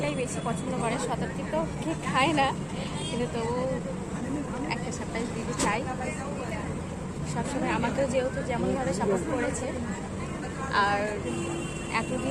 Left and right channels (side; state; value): both; identical; correlation 1.00